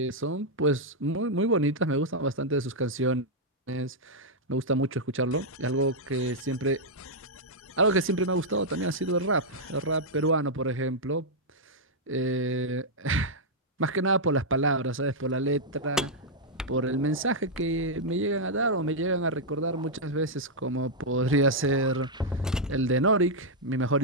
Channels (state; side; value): normal; both; correlation -0.05